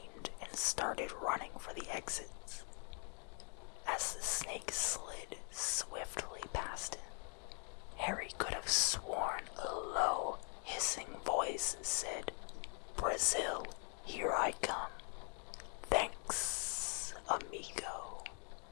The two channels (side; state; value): right; quieter; 39.9 dB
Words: and started running for the exits. As the snake slid swiftly past him, Harry could have sworn a low, hissing voice said, "Brazil, here I come. Thanks, amigo."